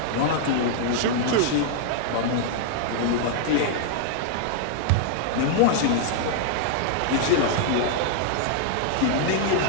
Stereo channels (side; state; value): both; different; correlation -0.01